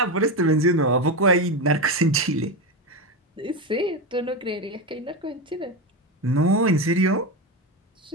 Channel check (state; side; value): normal; both; correlation 0.15